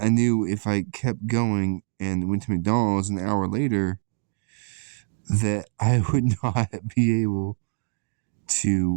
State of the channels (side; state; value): left; silent; 62 dB below the other